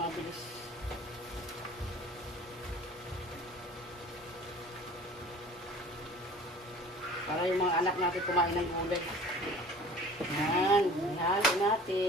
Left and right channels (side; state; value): both; normal; correlation 0.44